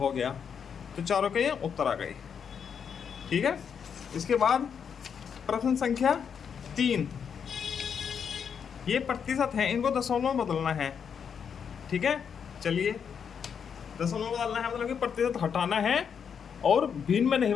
गया। तो चारों के ये उत्तर आ गए। ठीक है, इसके बाद प्रश्न संख्या 3, ये प्रतिशत है, इनको दशमलव में बदलना है। ठीक है, चलिए, दशमलव में बदलना है मतलब कि प्रतिशत हटाना है और भिन्न में नहीं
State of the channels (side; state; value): right; quieter; 7.1 dB